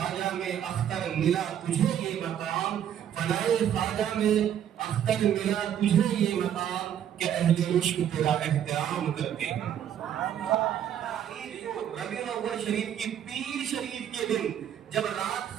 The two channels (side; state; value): left; quieter; 9.9 dB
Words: میں اختر ملا تجھے یہ مقام، فنائے خواجہ میں اختر ملا تجھے یہ مقام، کہ اہل عشق تیرا احترام کرتے ہیں۔ ربیع الاول شریف کی پیر شریف کے دن جب